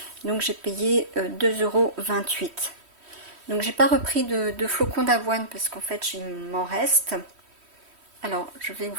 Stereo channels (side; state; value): left; late; 3.1 ms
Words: Donc j'ai payé 2,28 €. Donc j'ai pas repris de flocons d'avoine parce qu'en fait, il m'en reste. Alors, je vais